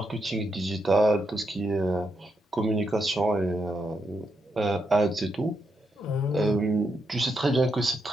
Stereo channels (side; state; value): both; normal; correlation 0.82